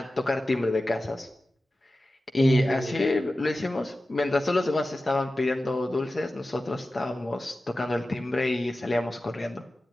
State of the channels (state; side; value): normal; both; correlation 0.94